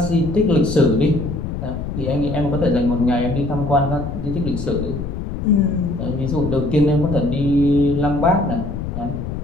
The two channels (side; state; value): left; noise; rumble, 5 dB below the sound